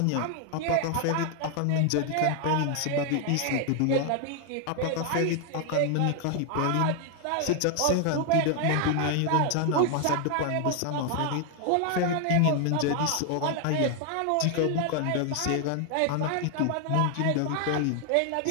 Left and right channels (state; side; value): different; both; correlation 0.00